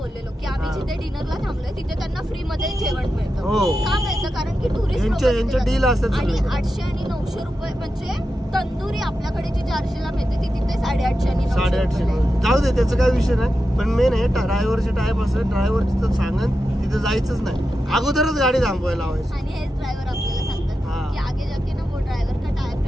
की आम्ही जिथे डिनरला थांबलोय तिथे त्यांना फ्री मध्ये जेवण मिळतं. का मिळतं? कारण की टुरिस्ट यांचे डील असतात. आणि 800 आणि 900 रुपये, म्हणजे तंदुरी आपल्याकडे जी 400ला मिळते ती तिथे 850 आणि 850. जाऊ दे, त्याचा काय विषय नाही. पण मेन आहे ड्रायव्हरचे टाईप असं, ड्रायव्हर तिथं सांगन तिथे जायचंच नाही, अगोदरच गाडी थांबवायला लावायची. आणि हेच ड्रायव्हर आपल्याला सांगतात की आगे जाके ना वो ड्रायव्हर का टाइप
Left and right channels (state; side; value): normal; both; correlation 0.90